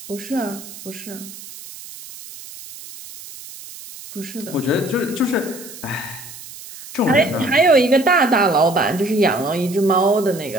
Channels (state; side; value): noise; right; hiss, 15 dB below the sound